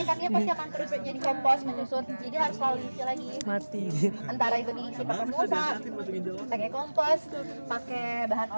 kan dia pasti akan terus jadi kompos, menyusut. Jadi harus selalu diisi lagi. Mati. Antara itu diisi pakai mulsa, pakai kompos, pakai bahan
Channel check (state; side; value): inverted; both; correlation -1.00